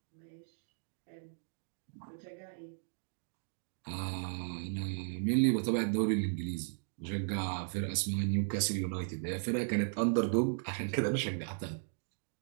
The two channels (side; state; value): left; silent; digital silence